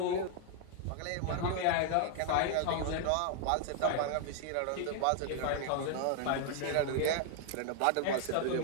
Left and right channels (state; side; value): different; both; correlation 0.00